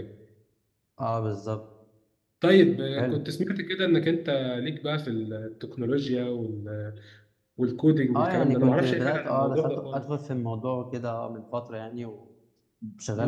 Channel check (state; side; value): identical; both; correlation 1.00